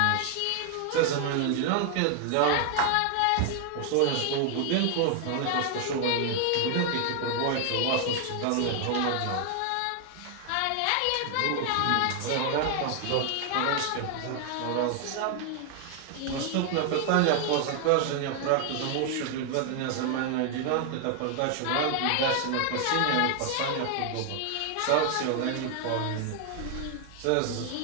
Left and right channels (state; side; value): different; both; correlation 0.00